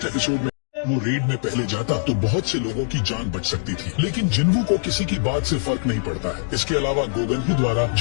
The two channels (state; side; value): silent; right; digital silence